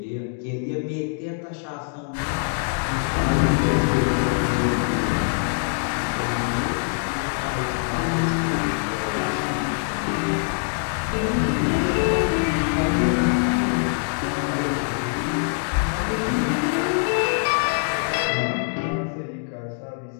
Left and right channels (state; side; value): silent; right; digital silence